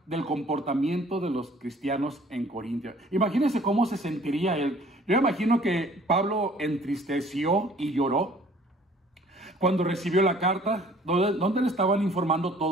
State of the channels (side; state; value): both; normal; correlation 0.54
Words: del comportamiento de los cristianos en Corintia. Imagínense cómo se sentiría él. Yo imagino que Pablo entristeció y lloró cuando recibió la carta, donde le estaban informando